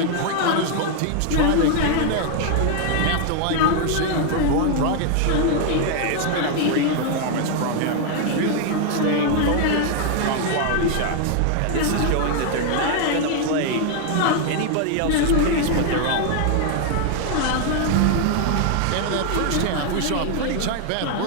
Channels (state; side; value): different; both; correlation 0.00